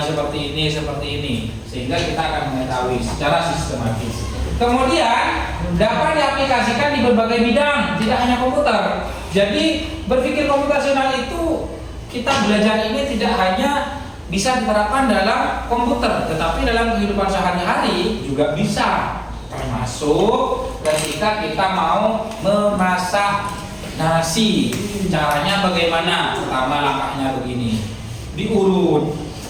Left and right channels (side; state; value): both; identical; correlation 1.00